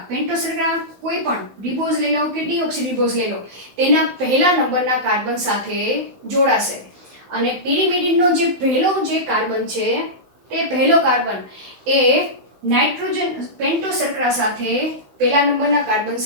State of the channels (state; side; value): late; left; 15 ms